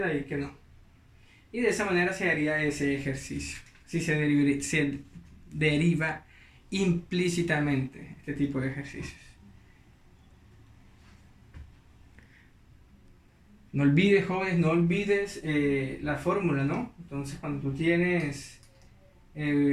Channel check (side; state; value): both; identical; correlation 1.00